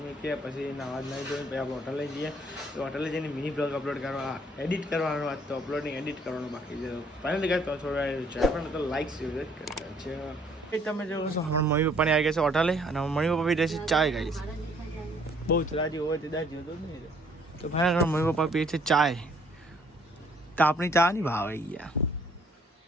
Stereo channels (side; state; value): both; normal; correlation 0.62